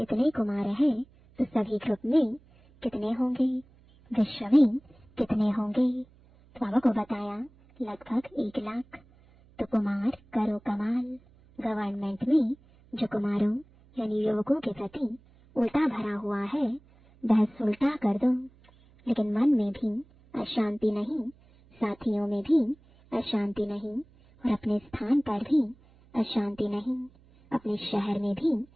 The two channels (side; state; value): right; noise; hum, 28 dB below the sound